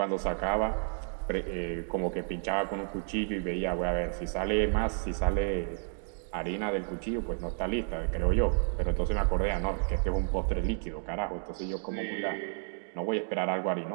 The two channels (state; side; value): silent; left; 57 dB below the other